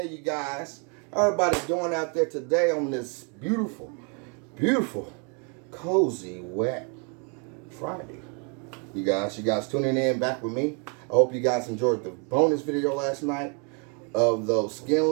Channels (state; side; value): quieter; left; 36.8 dB